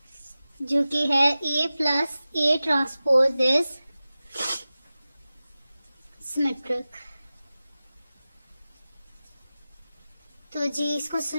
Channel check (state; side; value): inverted; both; correlation -0.95